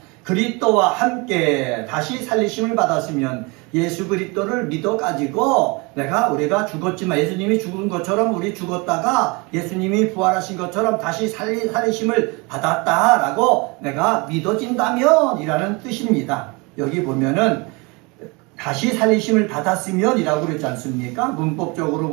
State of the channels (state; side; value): quieter; left; 27.9 dB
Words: 그리스도와 함께 다시 살리심을 받았으면 예수 그리스도를 믿어가지고 우리가 죽었지만 예수님이 죽은 것처럼 우리 죽었다가 예수님이 부활하신 것처럼 다시 살리심을 받았다라고 내가 믿어진다면 이라는 뜻입니다. 여기 보면은 다시 살리심을 받았으면 이라고 그랬지 않습니까? 문법적으로